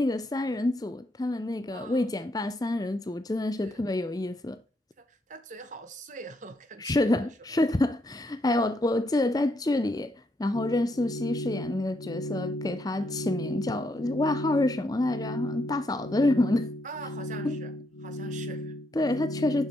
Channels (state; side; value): normal; both; correlation 0.76